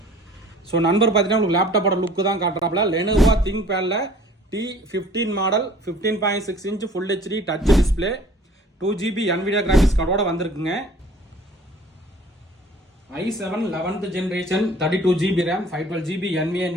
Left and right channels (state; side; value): normal; both; correlation 0.50